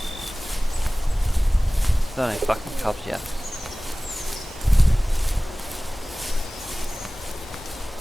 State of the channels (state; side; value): normal; both; correlation 0.98